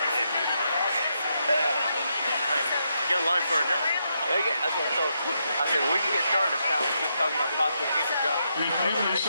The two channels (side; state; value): both; inverted; correlation -0.81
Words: Get a line for a job. Yeah, yeah, that's what I thought. I said, well, we can get started this time. We're just talking about possible future jobs.